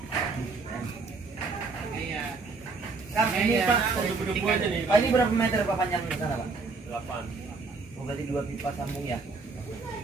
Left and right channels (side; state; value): left; quieter; 4.1 dB